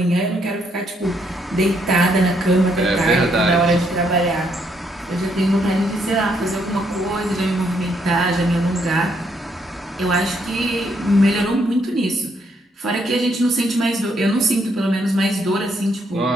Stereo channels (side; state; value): both; normal; correlation 0.73